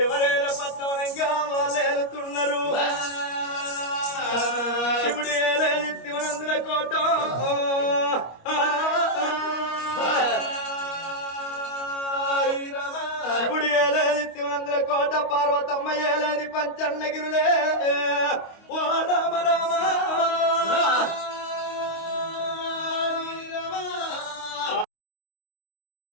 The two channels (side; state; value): right; late; 25 ms